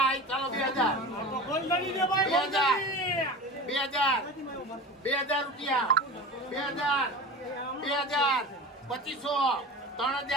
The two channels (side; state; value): both; normal; correlation 0.32